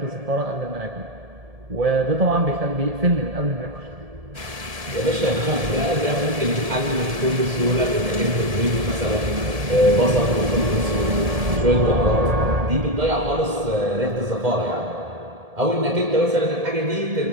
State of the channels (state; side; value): late; left; 1.7 ms